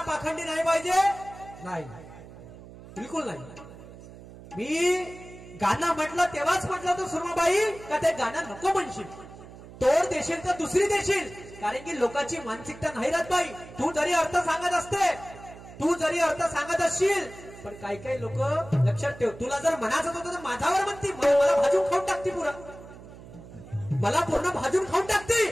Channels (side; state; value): right; noise; hum, 17 dB below the sound